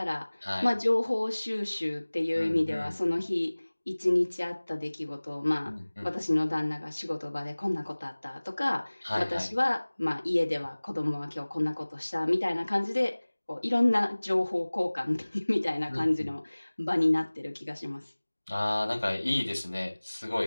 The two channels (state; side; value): inverted; both; correlation -1.00